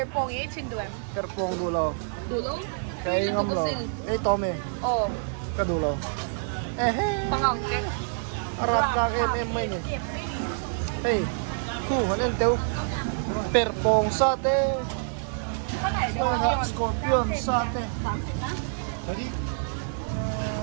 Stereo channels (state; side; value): silent; left; digital silence